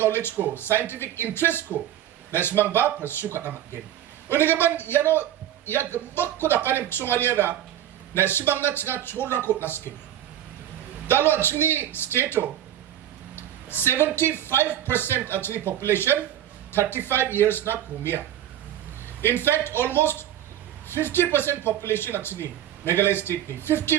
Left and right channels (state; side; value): quieter; left; 11.6 dB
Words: ko, scientific interest ko, na ismang ba pursue ka na mag-gain. Una gaman, yano, ya gambak ko na kanin kusunganya na ismang na nga chorang ko na skill. Dalo actually state 75% actually population 35 years na kumia. In fact, almost 50% population actually Meghalaya state ni